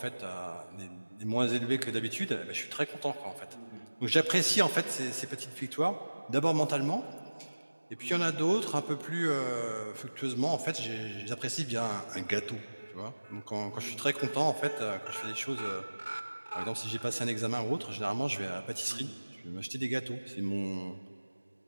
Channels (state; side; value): inverted; both; correlation -1.00